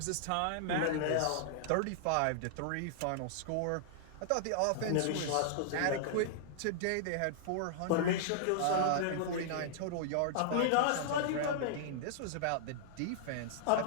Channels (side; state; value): both; different; correlation -0.01